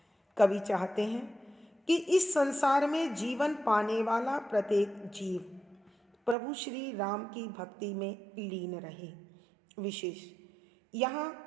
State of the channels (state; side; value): drops out; left; at 6.4 s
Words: कवि चाहते हैं कि इस संसार में जीवन पाने वाला प्रत्येक जीव प्रभु श्री राम की भक्ति में लीन रहे। विशेष यहाँ